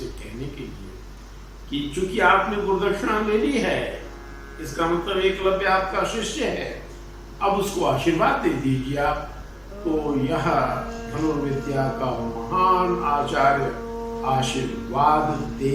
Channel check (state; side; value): identical; both; correlation 1.00